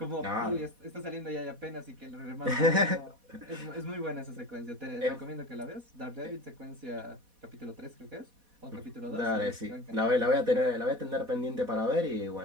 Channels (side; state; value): left; late; 4.1 ms